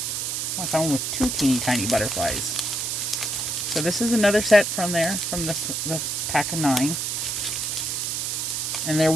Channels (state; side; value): noise; right; hiss, 1 dB below the sound